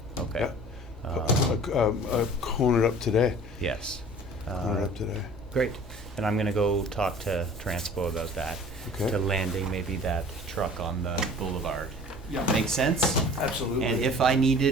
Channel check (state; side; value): normal; both; correlation 0.46